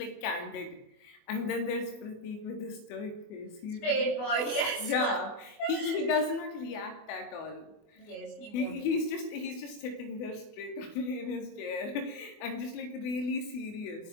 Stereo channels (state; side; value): late; right; 24 ms